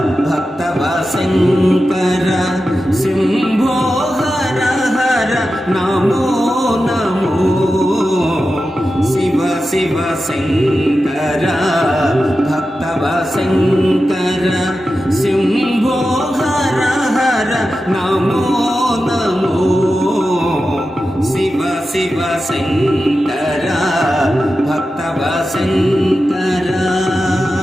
భక్తవ శంకర శంభో హర హర నమో నమో. శివ శివ శంకర భక్తవ శంకర శంభో హర హర నమో నమో. శివ శివ శంకర భక్తవ శంకర.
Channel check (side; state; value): both; normal; correlation 0.92